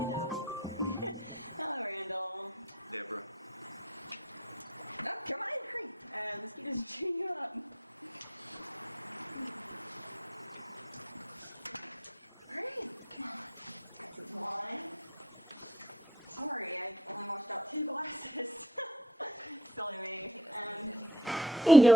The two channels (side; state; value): both; normal; correlation 0.56